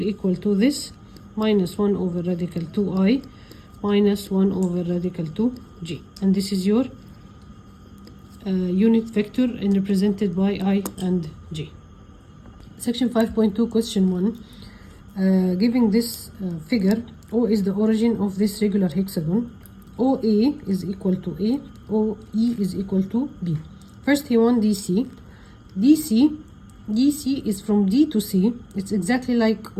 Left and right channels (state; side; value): identical; both; correlation 1.00